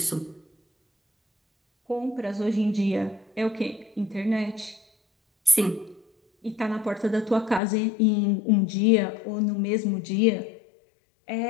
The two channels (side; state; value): right; drops out; at 7.6 s